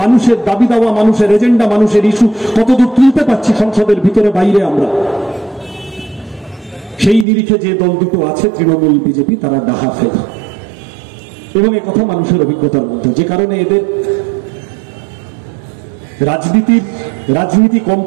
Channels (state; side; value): drops out; left; at 7.2 s